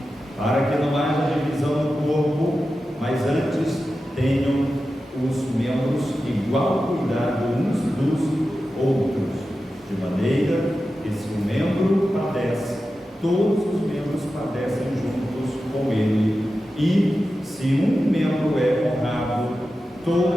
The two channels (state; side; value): normal; both; correlation 0.92